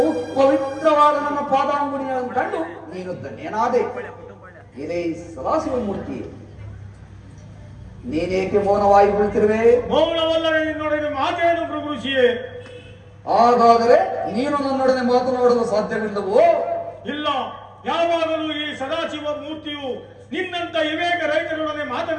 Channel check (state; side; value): identical; both; correlation 1.00